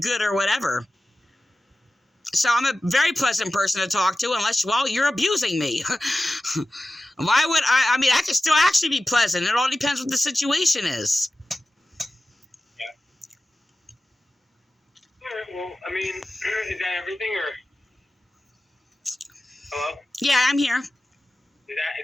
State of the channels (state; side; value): normal; both; correlation 0.94